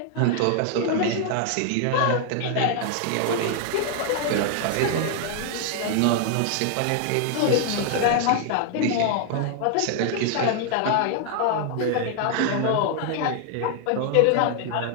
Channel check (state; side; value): different; both; correlation 0.00